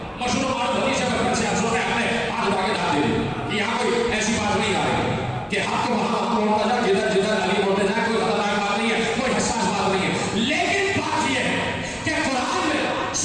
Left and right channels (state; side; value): identical; both; correlation 1.00